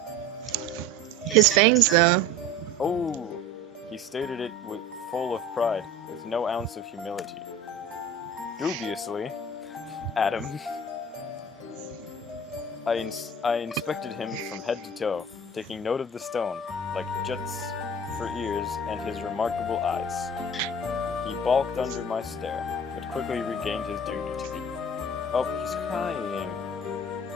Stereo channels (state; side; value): normal; both; correlation 0.38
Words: His fangs, though. Oh, he stated it full of pride, with no ounce of humility. Dubiously, Adam. I inspected him from head to toe, taking note of the stone, like jets for ears and his remarkable eyes. He balked under my stare, but quickly regained his dignity. Oh, he's crying.